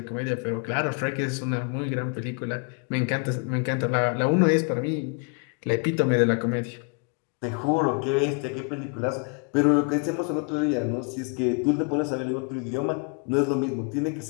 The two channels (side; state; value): right; quieter; 34.7 dB